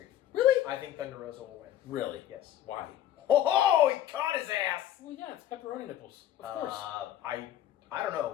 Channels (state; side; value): quieter; right; 11.6 dB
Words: Really? I think Thunder Rosa will win. Really? Yes. Why? Oh, he caught his ass! Well, yeah, it's pepperoni nipples. Of course. I don't